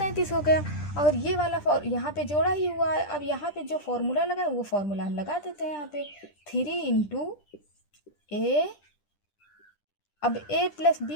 हो गया। और ये वाला यहाँ पे जोड़ा ही हुआ है। अब यहाँ पे जो फॉर्मूला लगा है वो फॉर्मूला हम लगा देते हैं यहाँ पे। 3 इंटू ए, अब ए प्लस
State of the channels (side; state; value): right; late; 10 ms